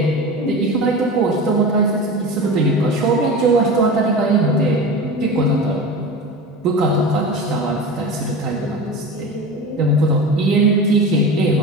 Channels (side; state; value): both; normal; correlation 0.30